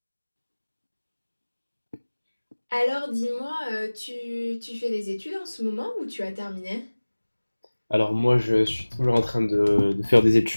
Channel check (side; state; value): both; inverted; correlation -1.00